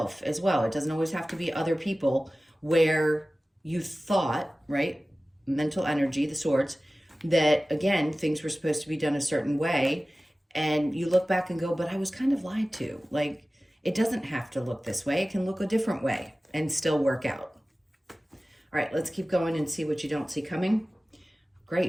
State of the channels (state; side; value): normal; both; correlation 0.97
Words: as well. It doesn't always have to be other people, where you thought, right, mental energy, the swords, that again, things were supposed to be done a certain way. And you look back and go, but I was kind of lied to. Like, it doesn't have to look this way. It can look a different way and still work out. All right, let's keep going and see what you don't see coming.